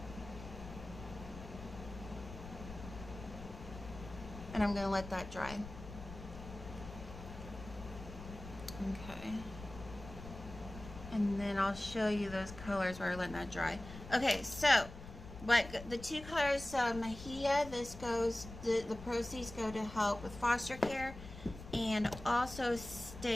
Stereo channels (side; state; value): left; noise; rumble, 13 dB below the sound